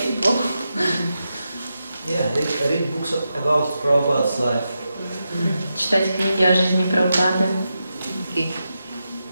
people. Yeah, read books about Prabhupada's life. Читать книги о жизни Прабхупады. Okay.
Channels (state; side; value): inverted; both; correlation -0.88